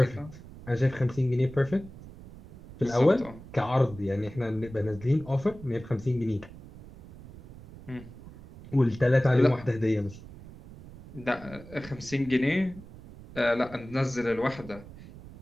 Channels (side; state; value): right; noise; rumble, 17 dB below the sound